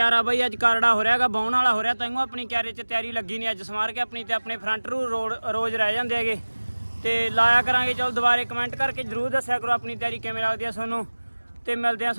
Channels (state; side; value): inverted; both; correlation -1.00